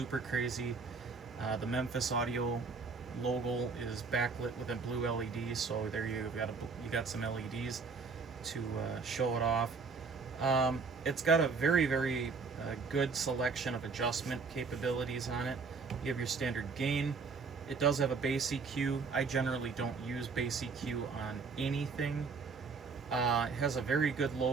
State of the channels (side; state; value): left; quieter; 4.8 dB